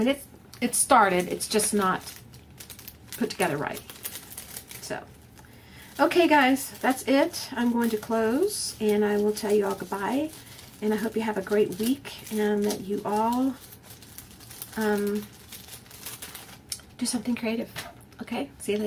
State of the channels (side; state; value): both; identical; correlation 1.00